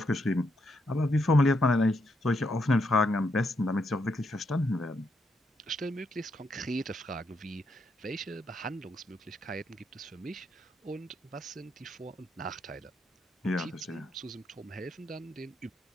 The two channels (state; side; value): normal; both; correlation 0.78